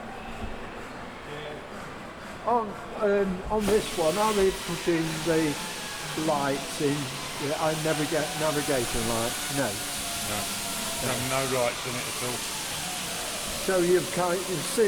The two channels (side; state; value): both; identical; correlation 1.00